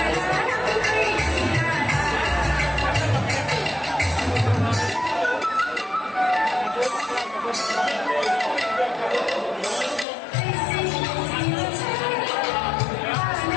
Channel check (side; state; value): right; drops out; at 10.1 s